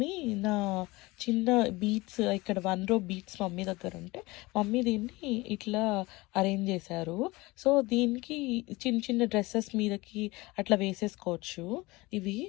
నా చిన్న బీడ్స్ ఇక్కడ 1 row బీడ్స్ మమ్మీ దగ్గర ఉంటే మమ్మీ దీన్ని ఇట్లా అరేంజ్ చేశారు. సో దీనికి చిన్న డ్రెస్సెస్ మీదకి అట్లా వేసేసుకోవచ్చు.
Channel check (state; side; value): quieter; right; 22.1 dB